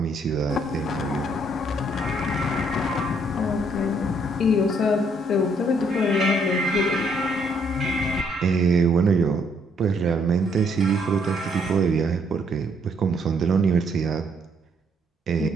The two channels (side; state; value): both; normal; correlation 0.69